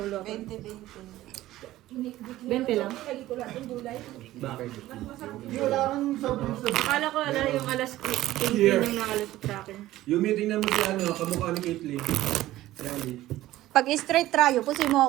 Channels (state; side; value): quieter; left; 15.5 dB